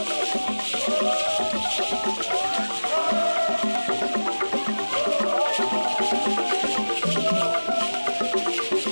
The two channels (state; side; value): inverted; both; correlation -1.00